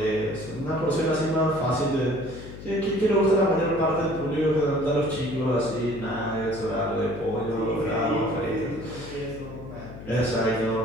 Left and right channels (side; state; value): left; noise; hum, 13 dB below the sound